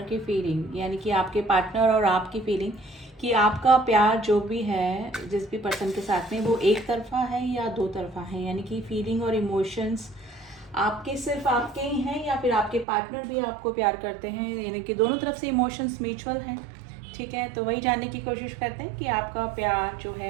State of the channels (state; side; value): drops out; left; at 12.9 s